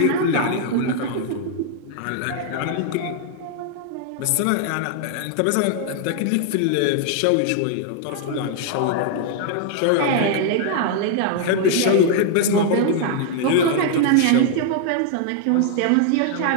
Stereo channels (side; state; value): both; different; correlation 0.00